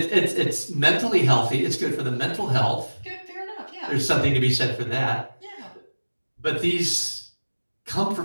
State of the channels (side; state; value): both; inverted; correlation -1.00